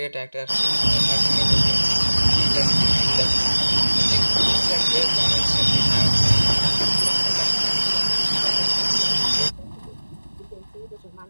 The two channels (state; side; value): inverted; both; correlation -1.00